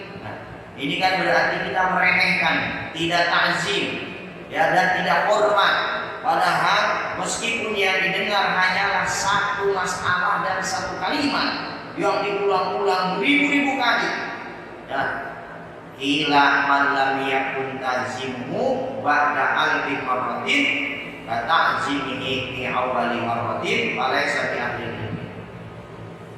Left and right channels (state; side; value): identical; both; correlation 1.00